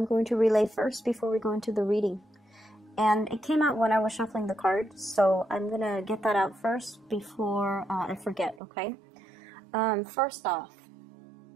going to relay first before we go into the reading. And it came out when I was shuffling the cards, so I'm going to get that out first before I forget, okay? First off,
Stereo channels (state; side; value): drops out; left; at 8.6 s